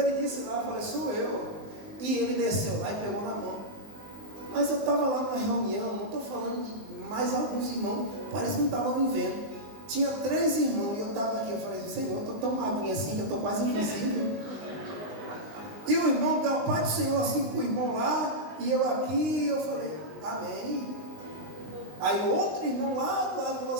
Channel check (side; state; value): left; late; 19 ms